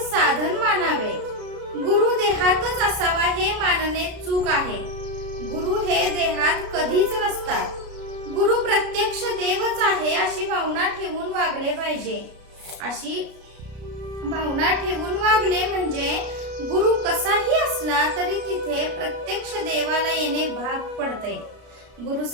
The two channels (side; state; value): left; late; 33 ms